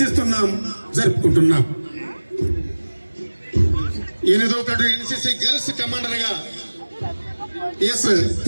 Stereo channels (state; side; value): inverted; both; correlation -1.00